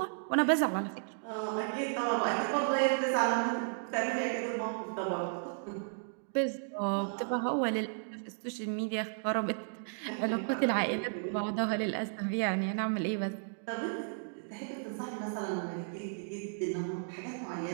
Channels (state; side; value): silent; left; digital silence